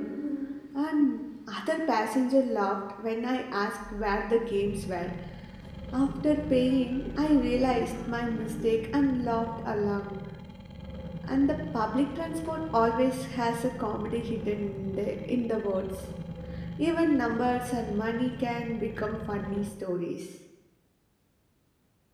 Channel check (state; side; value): identical; both; correlation 1.00